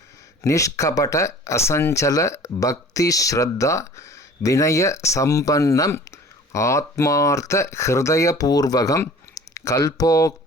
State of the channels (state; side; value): normal; both; correlation 0.46